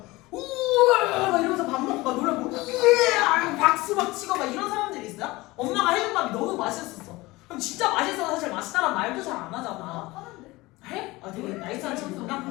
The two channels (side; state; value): right; quieter; 20.8 dB